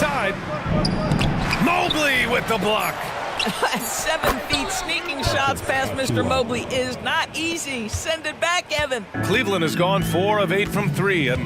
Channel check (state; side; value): identical; both; correlation 1.00